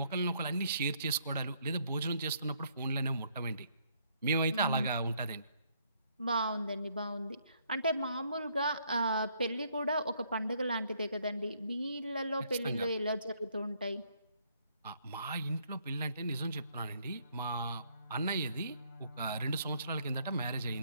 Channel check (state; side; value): inverted; both; correlation -0.69